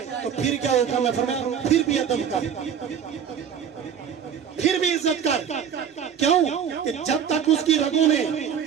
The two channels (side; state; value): left; quieter; 8.0 dB